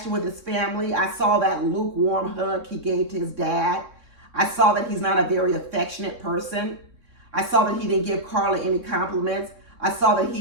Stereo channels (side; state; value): left; late; 3.6 ms